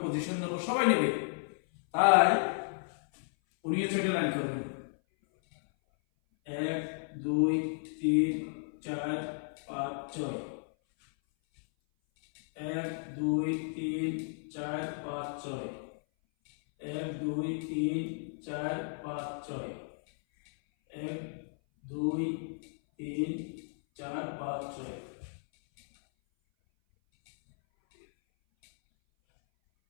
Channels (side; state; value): right; silent; 55 dB below the other